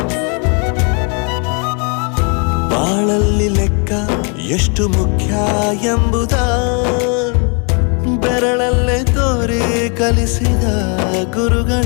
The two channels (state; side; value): quieter; right; 37.3 dB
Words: ಬಾಳಲ್ಲಿ ಲೆಕ್ಕ ಎಷ್ಟು ಮುಖ್ಯ ಎಂಬುದ ಬೆರಳಲ್ಲೇ ತೋರಿ ಕಲಿಸಿದ